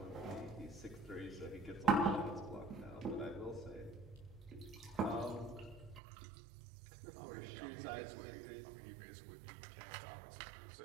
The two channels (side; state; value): left; drops out; at 6.0 s